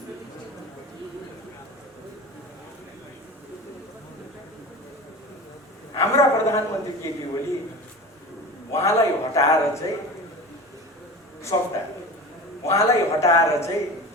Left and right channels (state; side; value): normal; both; correlation 0.33